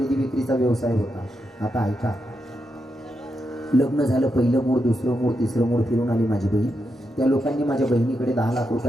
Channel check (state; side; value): normal; both; correlation 0.85